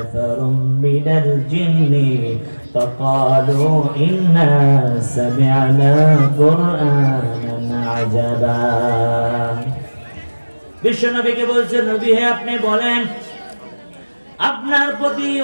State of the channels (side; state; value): both; inverted; correlation -1.00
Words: من الجن فقالوا إنا سمعنا قرآنا عجبا। বিশ্বনবীকে বলছেন, নবী হে আপনি বলেন, আপনার প্রতি